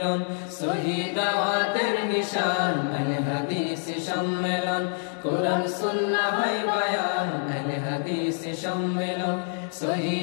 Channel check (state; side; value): silent; right; 61 dB below the other